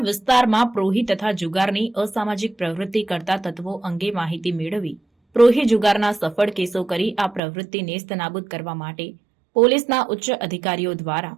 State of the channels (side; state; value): left; drops out; at 7.4 s